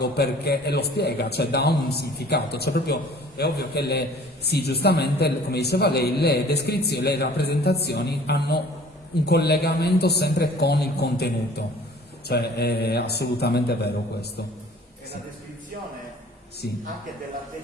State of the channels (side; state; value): both; normal; correlation 0.50